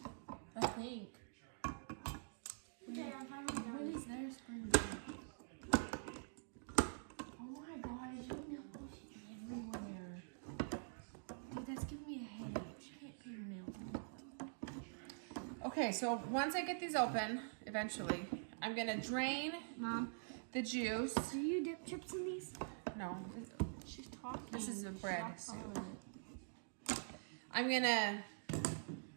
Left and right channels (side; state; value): left; silent; digital silence